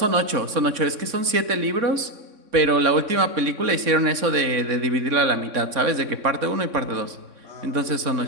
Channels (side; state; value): left; late; 3.6 ms